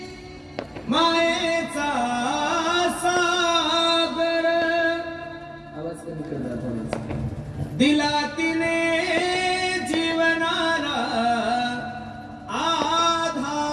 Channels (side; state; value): both; identical; correlation 1.00